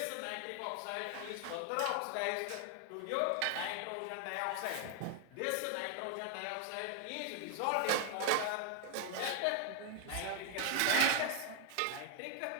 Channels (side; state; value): both; different; correlation 0.00